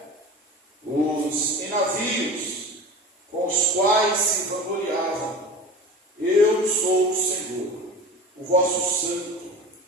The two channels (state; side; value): normal; both; correlation 0.35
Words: os em navios com os quais se vangloriavam. Eu sou o Senhor, o vosso Santo,